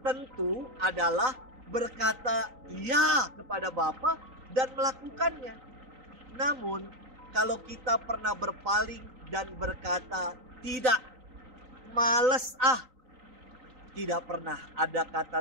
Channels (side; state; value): left; late; 3.9 ms